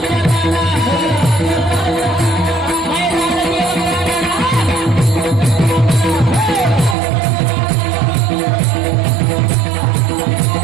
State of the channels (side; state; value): left; drops out; at 7.0 s